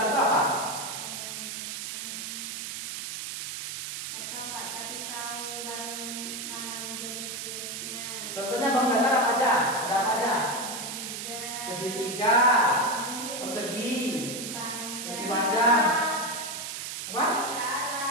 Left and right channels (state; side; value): noise; right; hiss, 6 dB below the sound